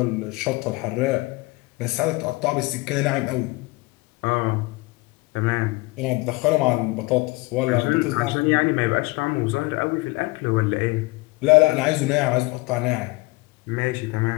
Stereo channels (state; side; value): quieter; right; 23.3 dB